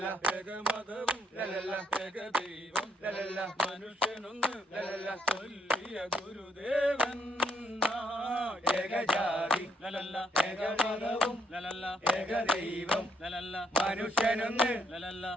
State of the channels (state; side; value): normal; both; correlation 0.72